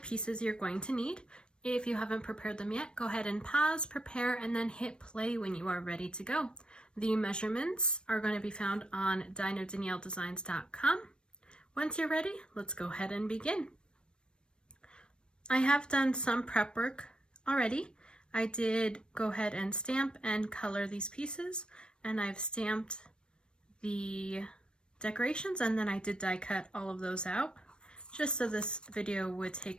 you're going to need. If you haven't prepared them yet, go ahead and pause, prepare, and then hit play when you are ready to go. The measurements are going to be found on dinodanielledesigns.com. Once you're ready, let's go ahead and begin. I have done some prep work already. I did go ahead and stamp and color these pieces, and I've stamped the decorations, and then I did die cut all of those out just so this video would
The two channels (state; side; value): late; right; 0.054 ms